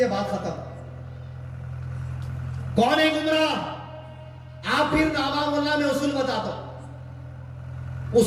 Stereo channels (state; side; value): identical; both; correlation 1.00